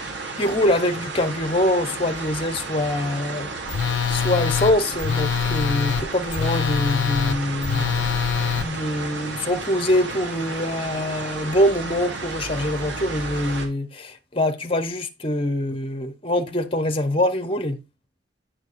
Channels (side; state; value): both; normal; correlation 0.44